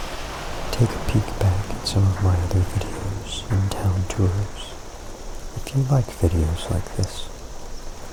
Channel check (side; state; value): both; identical; correlation 1.00